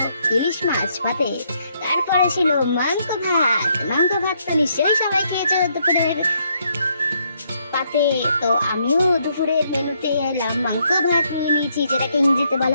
ইলিশ মাছ ভাতে। তারপরে ছিল মাংস ভাত। মাংস ভাত তো নিশ্চয়ই সবাই খেয়েছে দুপুরের পাতে। তো আমিও দুপুরের মেনুতে এলাম, মাংস ভাত নিয়ে নিয়েছি, যেটাকে ইংরেজিতে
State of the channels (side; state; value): both; inverted; correlation -0.73